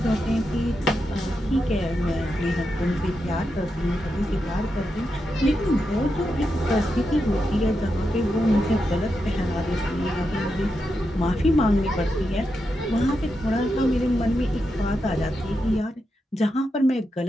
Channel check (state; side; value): normal; both; correlation 0.86